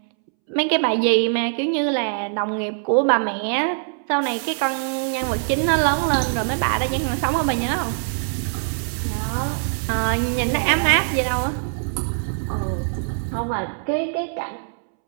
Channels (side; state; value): left; silent; 64 dB below the other